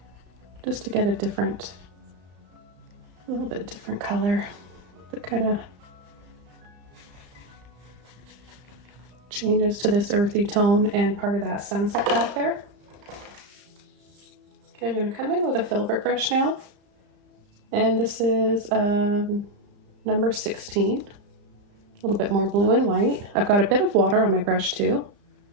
Just to get a little bit different color that kind of changes to this earthy tone and part of that sunset back there. Okay, I'm going to come in with a Filbert brush now. And this is number 16. A little bit more blue and white. I've got a bit of water on my brush too.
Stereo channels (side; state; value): left; late; 34 ms